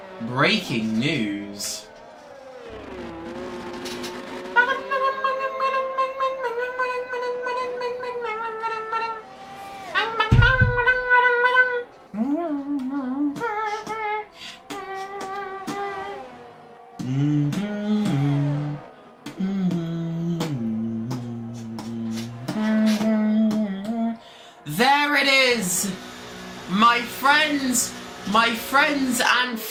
Breaking news. There it is! My friends and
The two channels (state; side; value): identical; both; correlation 1.00